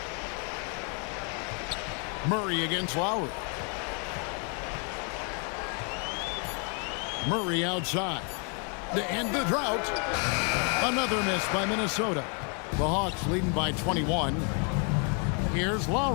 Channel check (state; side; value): quieter; right; 39.2 dB